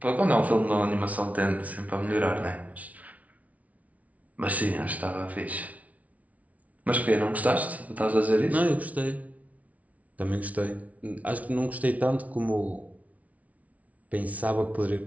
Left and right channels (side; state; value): left; late; 0.069 ms